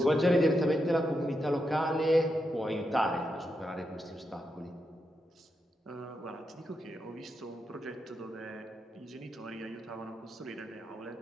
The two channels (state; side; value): normal; both; correlation 0.85